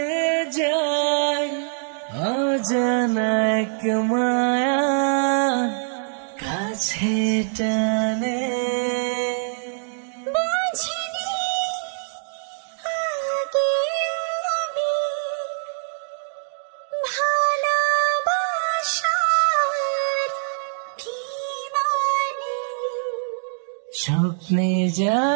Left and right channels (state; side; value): silent; left; digital silence